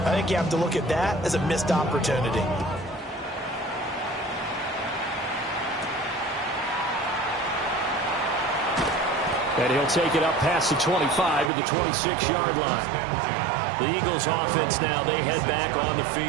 think you have to look at that as a missed opportunity. And he'll take it up past the 25 to the 26-yard line. The Eagles offense now, they head back on the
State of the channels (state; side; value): drops out; left; at 11.5 s